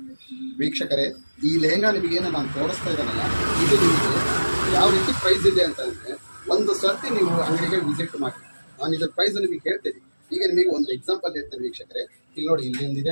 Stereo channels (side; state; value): both; inverted; correlation -1.00